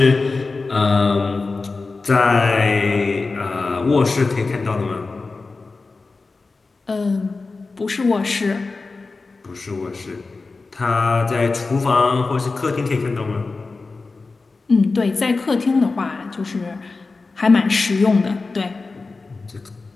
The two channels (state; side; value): quieter; right; 3.9 dB